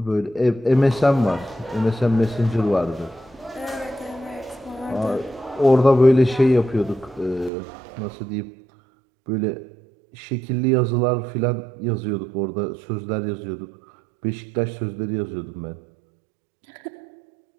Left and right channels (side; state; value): left; drops out; at 7.5 s